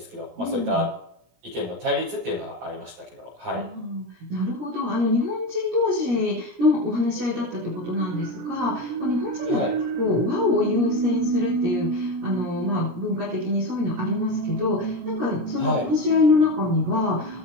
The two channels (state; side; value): late; left; 17 ms